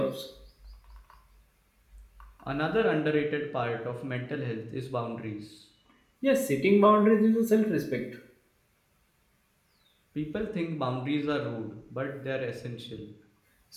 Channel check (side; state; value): both; identical; correlation 1.00